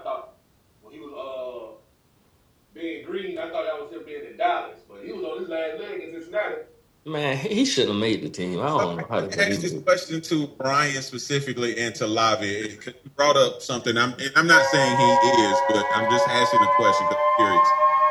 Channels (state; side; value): identical; both; correlation 1.00